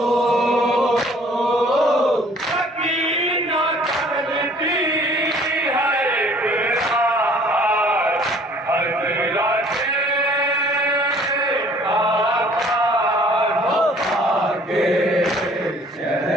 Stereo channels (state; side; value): normal; both; correlation 0.55